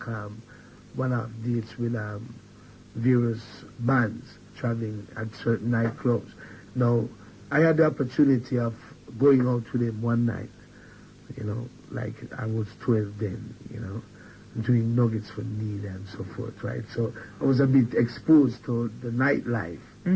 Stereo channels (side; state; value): both; identical; correlation 1.00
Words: one-off dates with various bands, traveling at certain nightclubs. Now, I had the opportunity of going out with him one night. You know, like I was 12 then. You know. Doing Nuggets for Need and so forth, right? So I was a bit exposed to the nightlife,